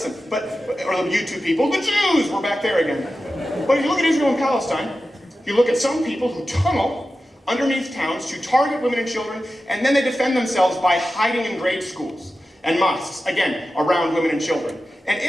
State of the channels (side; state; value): both; normal; correlation 0.93